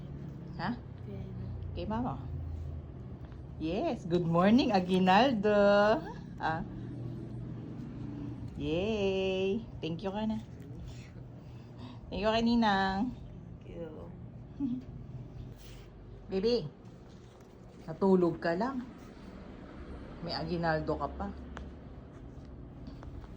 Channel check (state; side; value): identical; both; correlation 1.00